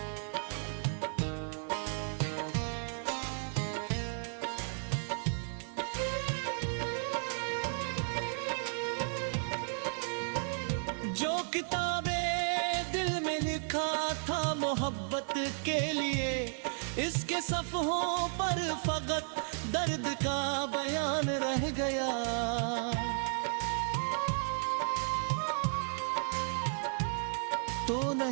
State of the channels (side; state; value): left; silent; 55 dB below the other